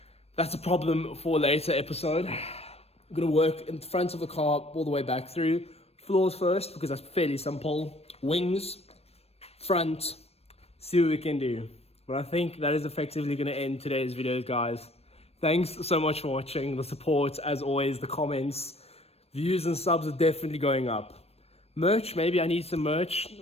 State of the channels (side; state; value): right; late; 0.29 ms